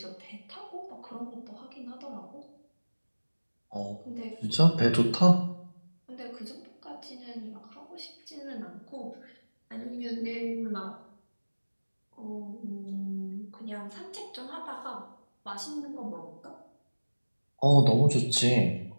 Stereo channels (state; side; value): inverted; both; correlation -1.00